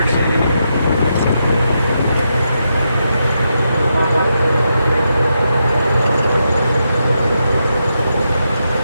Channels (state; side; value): inverted; both; correlation -0.84